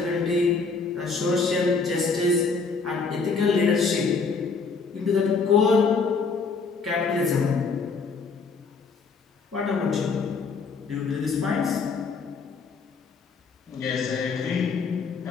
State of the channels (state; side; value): quieter; right; 4.7 dB